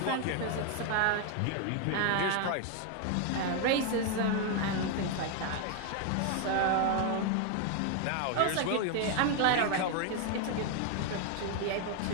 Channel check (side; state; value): both; different; correlation 0.01